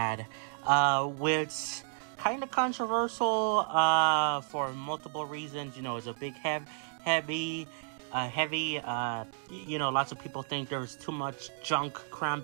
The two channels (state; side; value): silent; left; digital silence